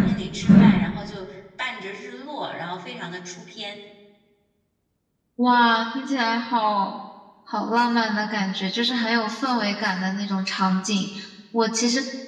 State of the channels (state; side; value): identical; both; correlation 1.00